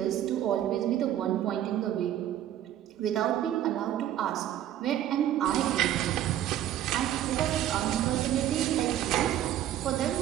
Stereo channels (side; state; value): left; quieter; 11.8 dB